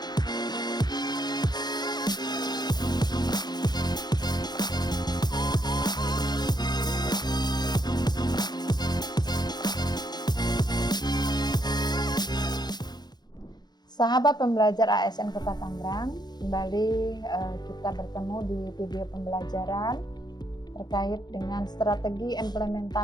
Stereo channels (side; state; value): right; late; 0.20 ms